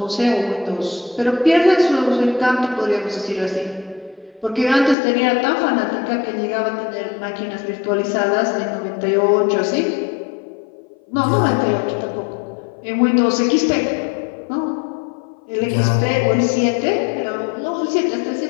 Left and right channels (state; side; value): drops out; right; at 5.0 s